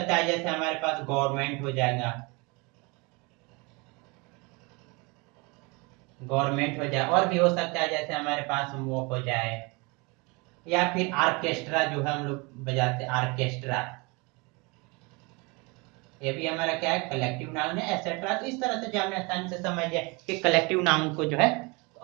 है जैसे हमारे पास गवर्नमेंट हो जाएगा, गवर्नमेंट हो जाए। और भी हो सकता है जैसे हमारे पास वो हो जाए, या फिर आर्केस्ट्रा जो है हम लोग बजाते हैं, आर्केस्ट्रा, ये भी हमारा क्या है, कलेक्टिव नाउन है, एटसेट्रा। तो इस तरह से जो हमने आसानी से समझ लिया कि कलेक्टिव नाउन को जो है। तो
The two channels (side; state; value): left; quieter; 27.9 dB